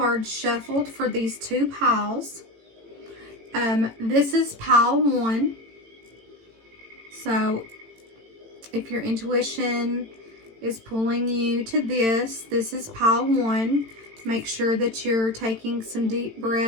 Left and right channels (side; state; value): left; late; 18 ms